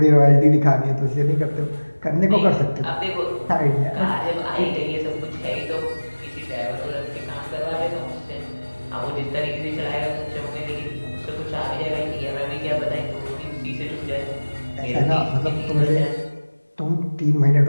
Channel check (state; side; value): inverted; both; correlation -1.00